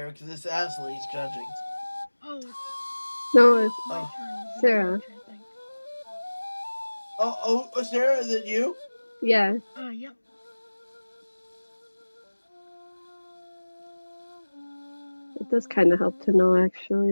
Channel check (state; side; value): inverted; both; correlation -1.00